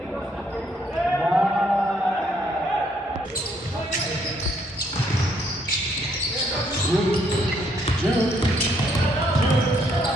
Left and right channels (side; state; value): both; normal; correlation 0.70